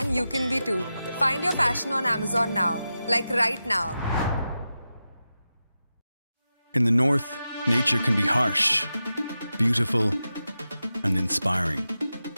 you can be too. Find your fashion on Amazon now, like right now. In the north, nature can be harsh, beautiful, and inspiring.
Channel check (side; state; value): both; inverted; correlation -0.92